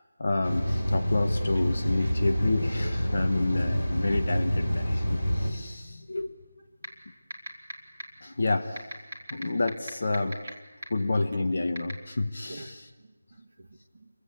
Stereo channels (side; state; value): both; inverted; correlation -0.97